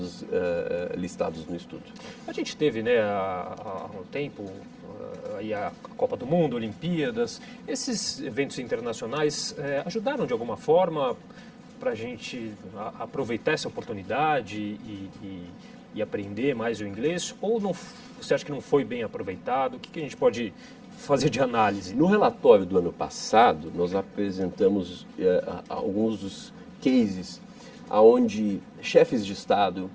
listados no estudo. A gente teve, né, há um tempo, aí a Copa do Mundo, Olimpíadas. Esses eventos internacionais ajudaram de alguma forma para a gente aproveitar essa oportunidade e aprender mais o inglês? Ou não, você acha que não foi bem aproveitado? O que a gente pode fazer de análise? No relatório do ano passado, nós apresentamos alguns dos cases onde chefes de Estado,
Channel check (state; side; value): identical; both; correlation 1.00